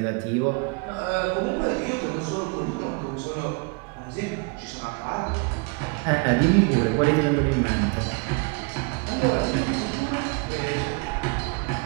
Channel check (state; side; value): quieter; left; 32.2 dB